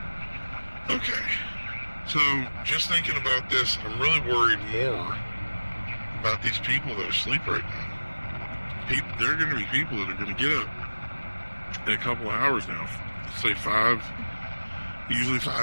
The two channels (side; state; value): both; inverted; correlation -1.00